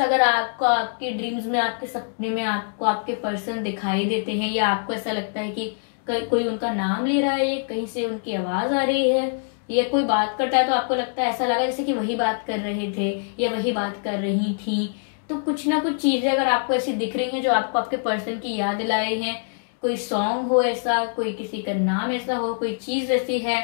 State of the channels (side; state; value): right; silent; digital silence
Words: अगर आपको आपके ड्रीम्स में, आपके सपने में आपको आपके पर्सन दिखाई देते हैं या आपको ऐसा लगता है कि कोई उनका नाम ले रहा है, कहीं से उनकी आवाज आ रही है या कोई बात करता है, तो आपको लगता है, ऐसा लगा जैसे कि वही बात कर रहे थे या वही बात कर रही थी, तो कुछ ना कुछ चीजें अगर आपको ऐसी दिख रही हैं जो आपको आपके पर्सन की याद दिलाए हैं, कोई सॉन्ग हो ऐसा, कोई किसी का नाम ऐसा हो, कोई चीज ऐसी है